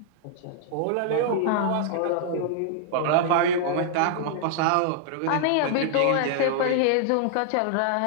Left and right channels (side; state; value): both; different; correlation -0.01